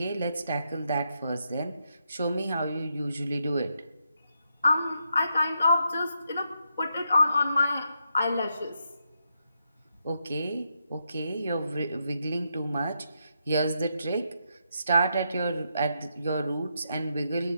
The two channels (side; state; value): both; inverted; correlation -0.81